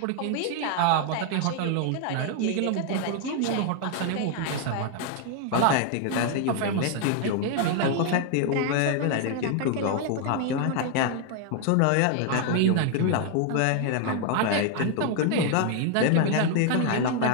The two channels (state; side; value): different; both; correlation 0.00